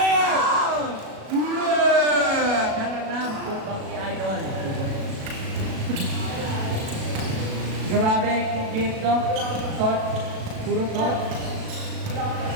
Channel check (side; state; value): left; late; 37 ms